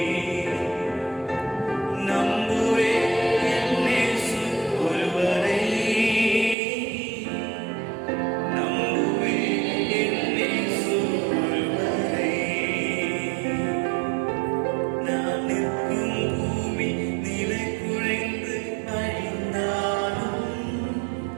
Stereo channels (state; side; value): drops out; left; at 6.6 s